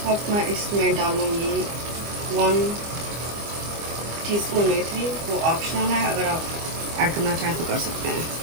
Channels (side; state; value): left; late; 25 ms